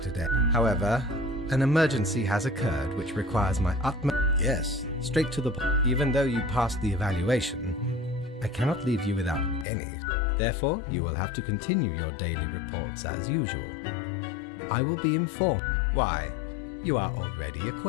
today. However, an emergency has occurred which requires my utmost... Yes, straight to the point. Even though you passed the evaluation, I cannot leave you without any. Therefore, you will have to continue your daily reports as usual. I will be informed. Why, you are already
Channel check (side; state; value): right; drops out; at 9.7 s